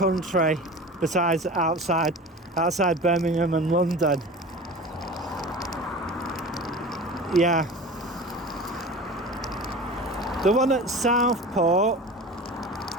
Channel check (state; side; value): normal; both; correlation 0.35